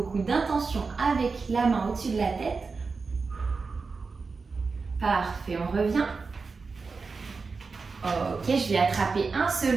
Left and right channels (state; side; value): quieter; left; 4.5 dB